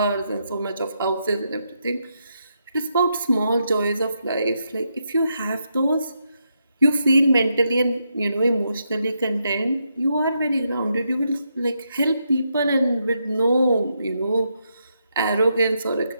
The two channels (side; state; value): both; inverted; correlation -0.81